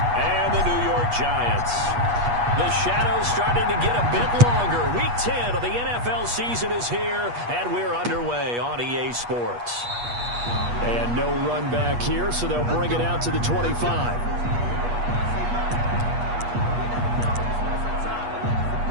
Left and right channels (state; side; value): late; left; 8.3 ms